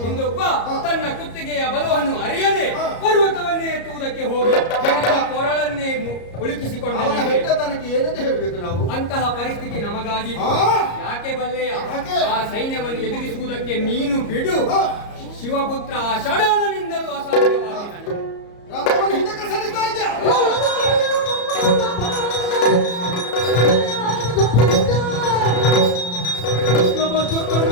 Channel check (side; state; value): right; late; 34 ms